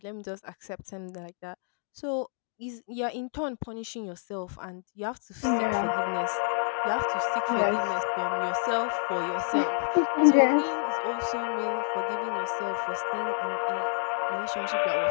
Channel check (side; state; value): right; silent; 59 dB below the other